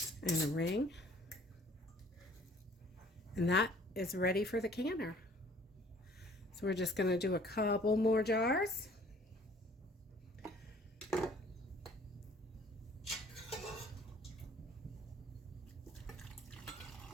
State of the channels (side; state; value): both; normal; correlation 0.55